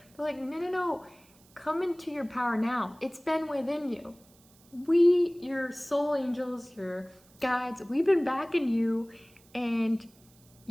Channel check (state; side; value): noise; right; hiss, 29 dB below the sound